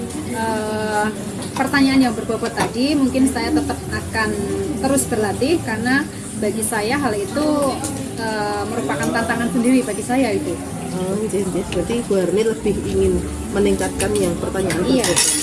pertanyaan yang berbobot tadi mungkin saya tetap akan terus berlatih, karena bagi saya hal itu merupakan tantangan sendiri bagi saya itu. Oh, jadi berarti Bu Harni lebih ingin meningkatkan yang pertanyaan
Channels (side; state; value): both; identical; correlation 1.00